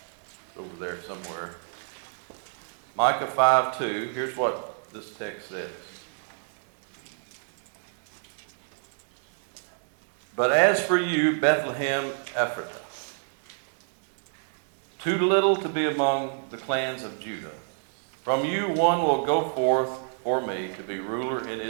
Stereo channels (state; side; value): silent; left; digital silence